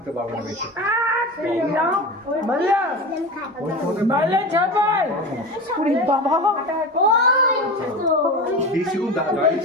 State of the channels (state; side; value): normal; both; correlation 0.28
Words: পারবো না বেশি।